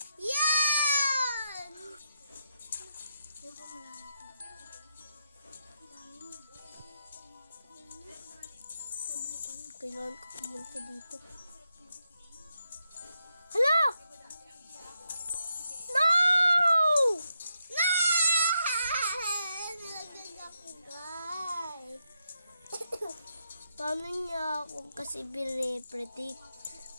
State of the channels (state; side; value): inverted; both; correlation -0.83